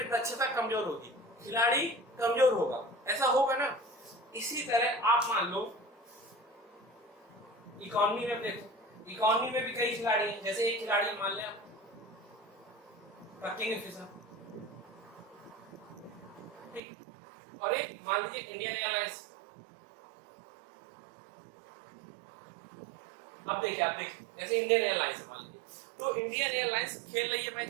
दक्षता कमजोर होगी, खिलाड़ी कमजोर होगा, ऐसा होगा ना। इसी तरह आप मान लो इकोनॉमी में देखो, इकोनॉमी में भी कई खिलाड़ी हैं। जैसे एक खिलाड़ी मान लें किंगफिशर, ठीक, और एक मान लीजिए इंडियन एयरलाइंस। अब देखिए जैसे इंडियन एयरलाइंस मान लीजिए, तो इंडियन एयरलाइंस खेल रही है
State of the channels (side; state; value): left; drops out; at 16.8 s